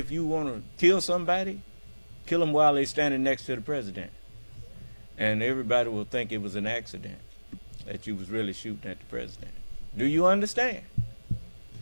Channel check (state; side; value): inverted; both; correlation -1.00